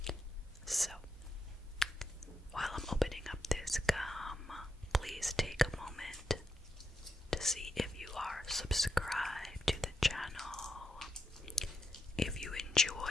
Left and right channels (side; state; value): both; normal; correlation 0.84